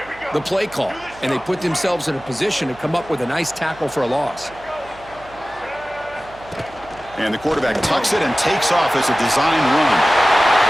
the play call, and they put themselves in a position to come up with a nice tackle for a loss. And the quarterback tucks it and takes off as a design run.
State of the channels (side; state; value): right; noise; hum, 23 dB below the sound